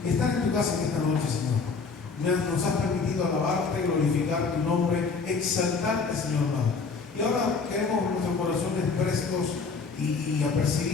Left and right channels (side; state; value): right; quieter; 4.7 dB